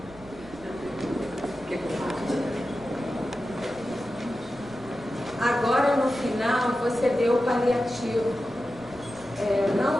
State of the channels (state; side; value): noise; right; rumble, 20 dB below the sound